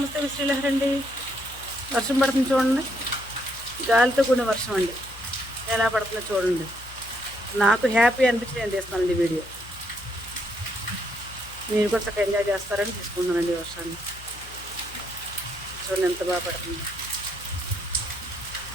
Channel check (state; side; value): noise; left; hum, 18 dB below the sound